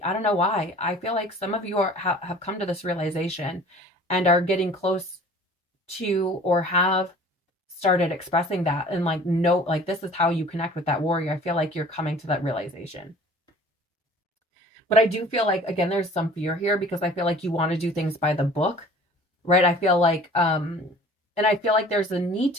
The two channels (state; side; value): normal; both; correlation 0.47